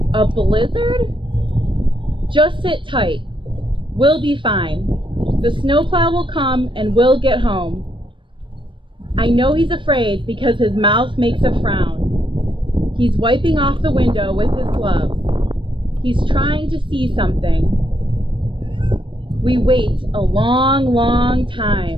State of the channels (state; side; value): late; left; 0.24 ms